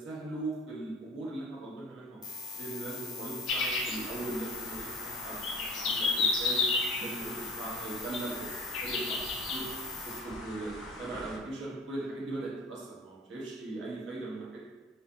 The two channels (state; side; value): normal; both; correlation 0.46